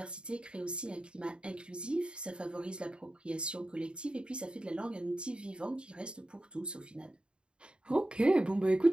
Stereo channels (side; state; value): left; late; 0.053 ms